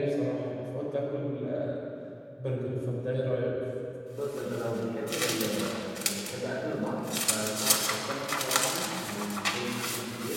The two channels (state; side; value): identical; both; correlation 1.00